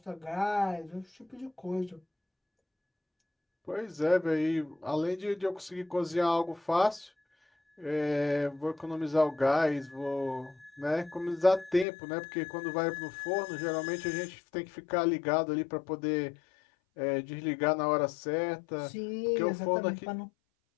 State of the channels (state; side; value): drops out; right; at 11.9 s